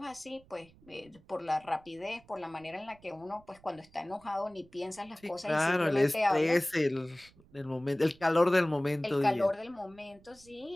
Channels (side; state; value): right; noise; rumble, 27 dB below the sound